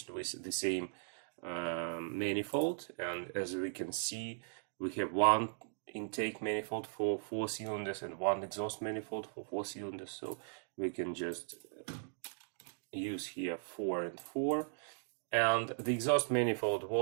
with the same manifold. And as we can see, we have one intake manifold for 4 cylinders and one exhaust manifold for 4 cylinders. So we can just use here 4 and 4. And the exhaust manifold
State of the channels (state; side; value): silent; left; digital silence